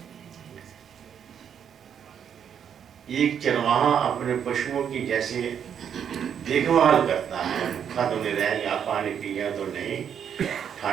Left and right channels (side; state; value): left; quieter; 8.3 dB